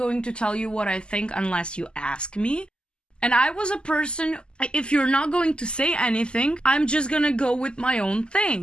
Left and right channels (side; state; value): right; late; 0.049 ms